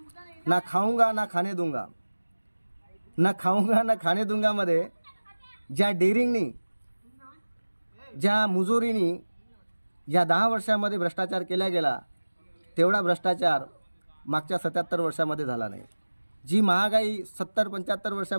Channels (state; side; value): inverted; both; correlation -1.00